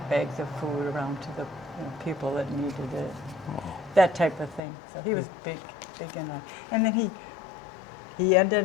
bags of food around to the people that needed it, that type of thing. So he was big in that. And then he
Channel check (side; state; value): right; drops out; at 4.6 s